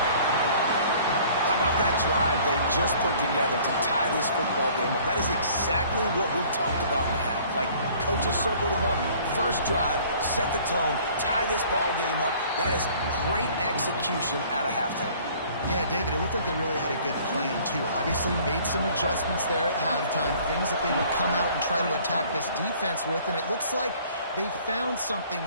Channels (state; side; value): inverted; both; correlation -0.54